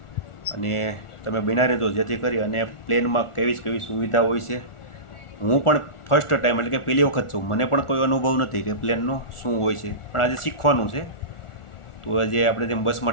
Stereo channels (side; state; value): right; late; 1.4 ms